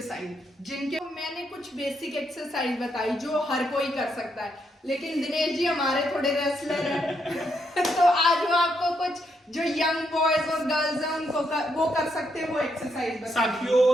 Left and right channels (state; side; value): normal; both; correlation 0.78